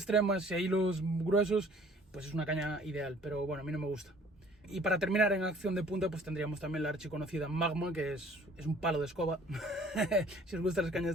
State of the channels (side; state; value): both; normal; correlation 0.54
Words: y hilos gruesos, pues es una caña ideal, pero bueno, a mí no me gusta. Y para terminar en acción de punta, pues tendríamos también la archiconocida Magma, que es un palo de escoba. Si os gustan las cañas